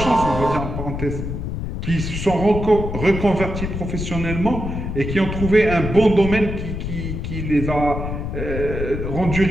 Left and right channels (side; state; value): left; noise; rumble, 4 dB below the sound